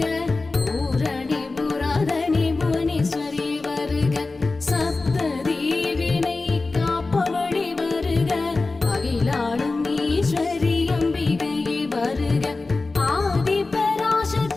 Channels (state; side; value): quieter; right; 3.5 dB